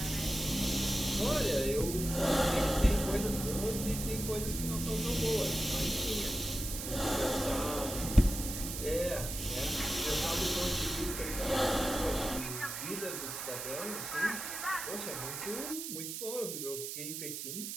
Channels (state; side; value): noise; right; hiss, 6 dB below the sound